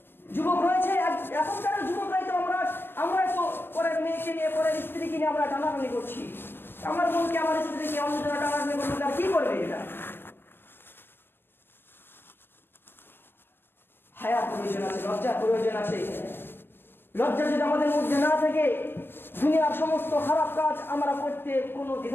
এখনকার যুবকরাই তো আমরা তো পরের মেয়েকে নিয়ে, পরের স্ত্রীকে নিয়ে আমরা টানাটানি করছি। আমার বোনকে, আমার স্ত্রীকে অন্য জন্য টানাটানি করবে, তার কি করবে? এটা হায়ার প্রয়োজন আছে, লজ্জার প্রয়োজন আছে। লজ্জা যদি আমাদের মধ্যে না থাকে, দুনিয়ার সমস্ত খারাপ কাজ আমরা করতে কোনো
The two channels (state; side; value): late; right; 0.10 ms